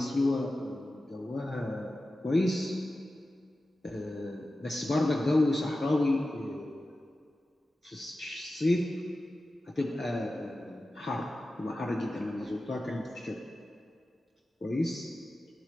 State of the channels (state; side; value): normal; both; correlation 0.94